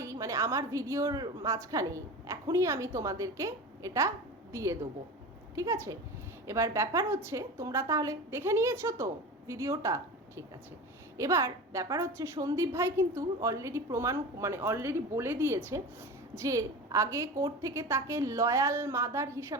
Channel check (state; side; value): normal; both; correlation 0.30